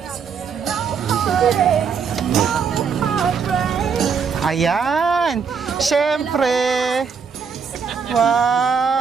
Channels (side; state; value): left; quieter; 6.2 dB